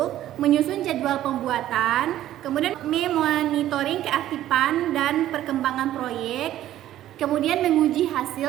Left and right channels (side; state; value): left; quieter; 13.0 dB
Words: menyusun jadwal pembuatan, kemudian memonitoring keaktifan dan perkembangan proyek, kemudian menguji